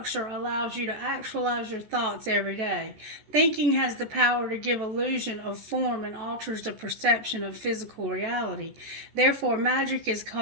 allows you to actualize your thoughts every day. Thinking has the power to give illusion of form and alters the perception of physical reality. Therefore, magic is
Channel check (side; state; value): left; late; 14 ms